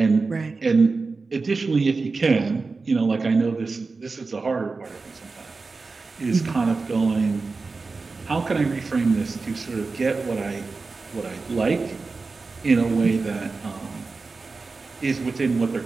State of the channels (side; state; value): left; quieter; 4.1 dB